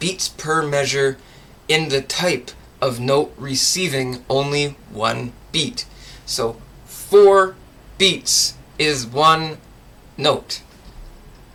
per measure in the type of note receiving only one beat. So 4 beats is one note,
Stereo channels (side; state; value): both; identical; correlation 1.00